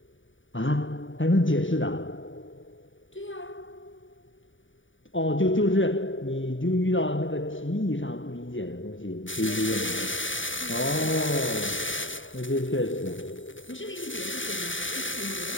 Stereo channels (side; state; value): right; late; 0.56 ms